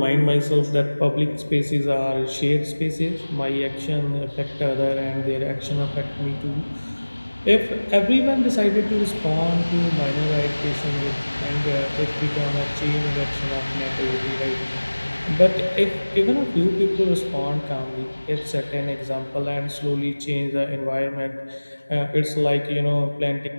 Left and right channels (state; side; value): inverted; both; correlation -1.00